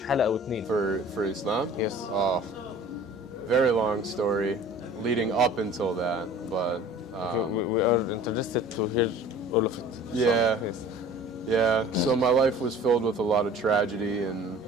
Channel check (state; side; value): normal; both; correlation 0.46